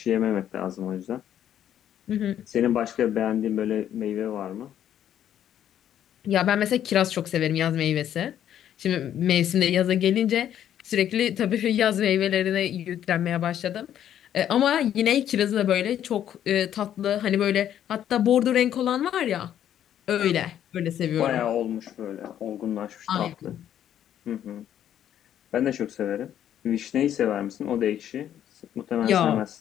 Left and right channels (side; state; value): right; quieter; 10.5 dB